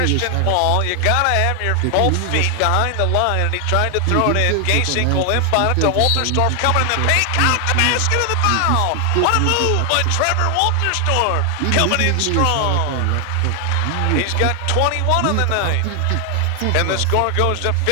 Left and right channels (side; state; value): both; different; correlation 0.00